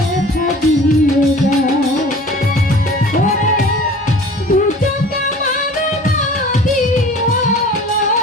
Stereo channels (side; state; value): both; normal; correlation 0.44